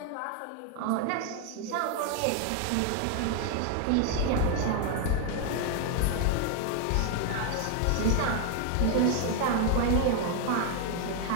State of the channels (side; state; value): both; different; correlation 0.01